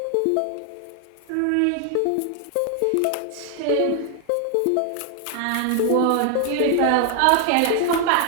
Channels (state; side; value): different; both; correlation 0.00